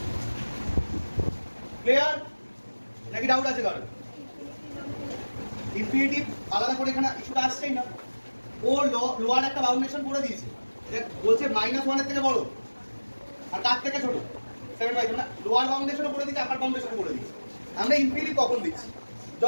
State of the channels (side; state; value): both; inverted; correlation -1.00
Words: ক্লিয়ার নাকি ডাউট আছে কারণ? ইনফিনিটিভ আলাদা করে এখানে ইস্যুটা আসছেই না। ও লোয়ার একটা বাউন্ডেশন করে দিয়েছে, বলছে -1 এর থেকে বড় আর তার থেকে ছোট 7/3। মানে লোয়ার বাউন্ডেশনও করে দিয়েছে, আপার বাউন্ডেশনও করে দিয়েছে। আমরা ইনফিনিটিভ কখন দিচ্ছি?